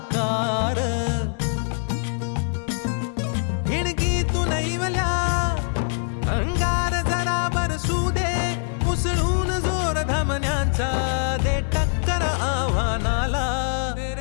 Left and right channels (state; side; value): silent; right; 57 dB below the other